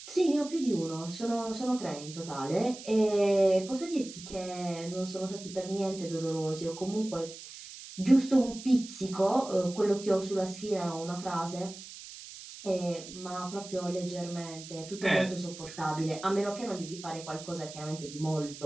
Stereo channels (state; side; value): noise; right; hiss, 14 dB below the sound